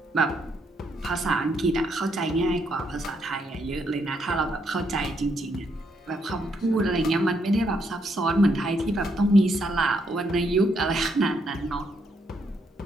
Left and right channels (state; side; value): normal; both; correlation 0.75